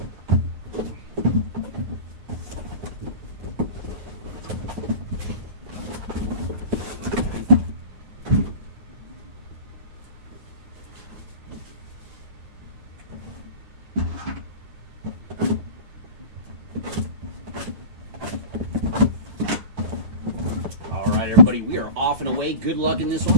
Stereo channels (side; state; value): left; late; 9.6 ms